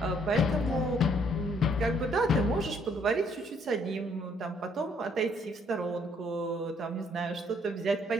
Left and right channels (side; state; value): both; normal; correlation 0.66